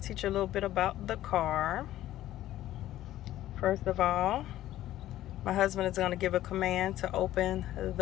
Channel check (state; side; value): quieter; right; 13.9 dB